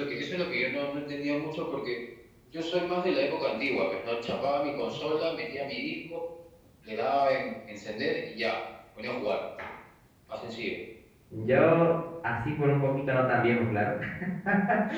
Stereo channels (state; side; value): identical; both; correlation 1.00